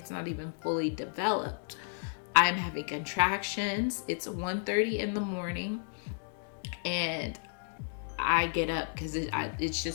not even fully developed. I'm having contractions. It's 1:30 in the morning, and I get up because it's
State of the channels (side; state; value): right; silent; digital silence